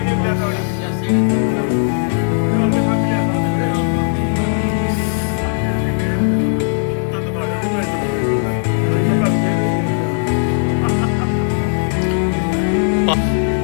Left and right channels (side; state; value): right; silent; digital silence